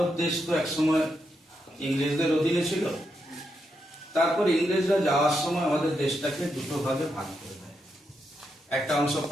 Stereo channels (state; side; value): normal; both; correlation 0.83